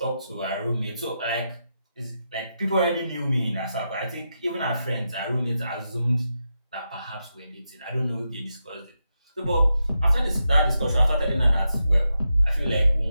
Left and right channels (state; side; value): inverted; both; correlation -0.86